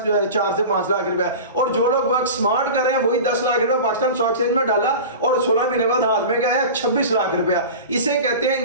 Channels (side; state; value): both; inverted; correlation -0.32